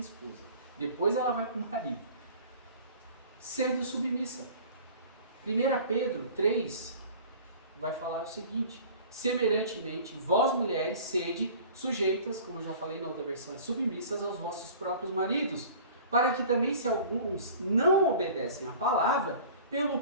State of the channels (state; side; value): inverted; both; correlation -0.44